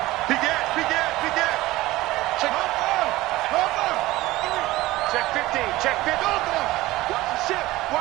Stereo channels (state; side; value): quieter; left; 18.1 dB